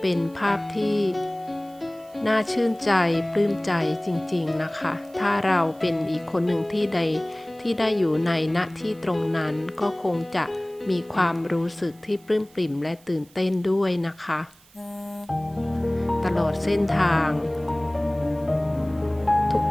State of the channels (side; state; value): right; noise; hiss, 27 dB below the sound